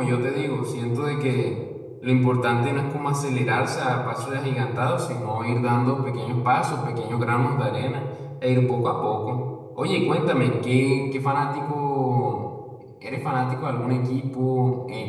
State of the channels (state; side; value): identical; both; correlation 1.00